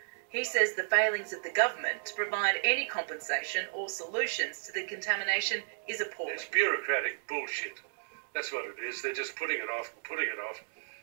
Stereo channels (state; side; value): silent; left; digital silence